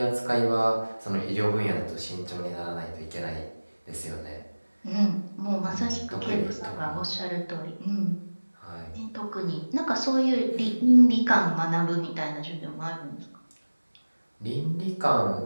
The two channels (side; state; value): both; inverted; correlation -1.00